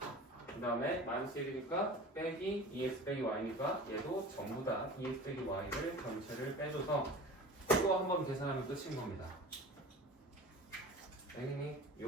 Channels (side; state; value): both; normal; correlation 0.38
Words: 그 다음에 마이너스 1이니까 빼기 2x 빼기 y니까 얘도 전부 다 2x 빼기 y를 전체를 빼줘서 이거 한번 계산하면 끝인 겁니다. 당연히